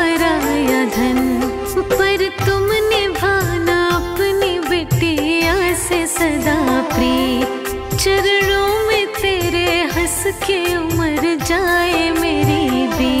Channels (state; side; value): identical; both; correlation 1.00